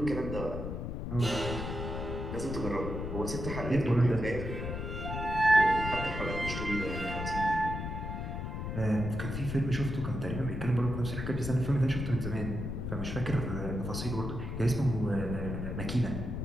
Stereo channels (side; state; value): left; noise; rumble, 4 dB below the sound